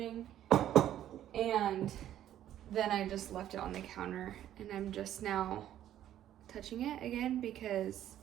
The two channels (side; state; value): left; quieter; 11.7 dB